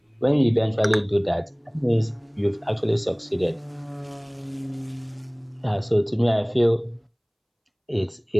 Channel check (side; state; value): both; identical; correlation 1.00